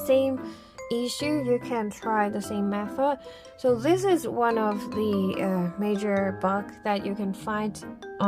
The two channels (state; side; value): identical; both; correlation 1.00